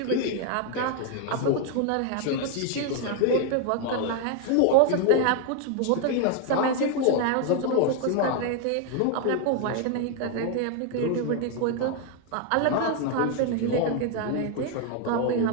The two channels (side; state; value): both; different; correlation 0.00